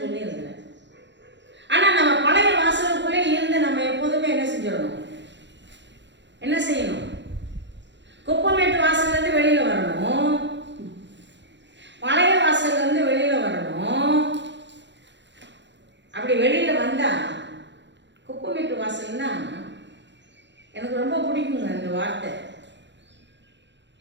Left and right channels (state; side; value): late; left; 0.52 ms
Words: சொல்லி இருக்கிறேன். ஆனா நம்ம பழைய வாசலுக்குள்ளே இருந்து நம்ம எப்போதுமே என்ன செஞ்சிடணும்? என்ன செய்யணும்? குப்பமேட்டு வாசல்ல இருந்து வெளியில வரணும், பழைய வாசல்ல இருந்து வெளியில வரணும். அப்படி வெளியில வந்தா குப்பமேட்டு வாசல்னா எனக்கு ரொம்ப பிடிக்குங்க அந்த வார்த்தை.